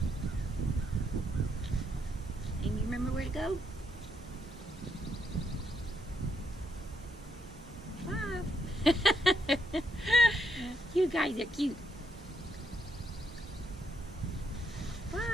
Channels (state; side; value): normal; both; correlation 0.75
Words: And you remember where to go? 5. You guys are cute.